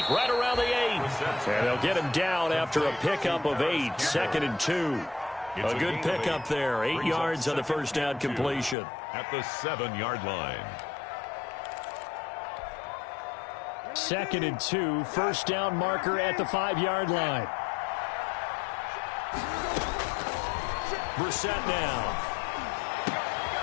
right around the 8. And they'll get him down after a pickup of 8. 2nd and 2. A good pickup there. 8 yards on the first down completion. At the 7-yard line. 2nd and 2. First down marker at the 5-yard line. Brissett now.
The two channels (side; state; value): right; drops out; at 8.8 s